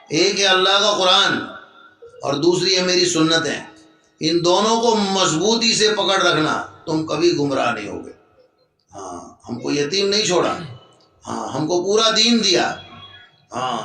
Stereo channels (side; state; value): both; identical; correlation 1.00